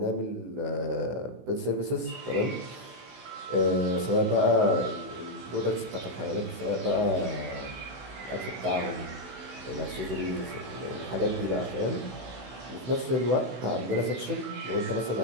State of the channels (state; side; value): late; left; 16 ms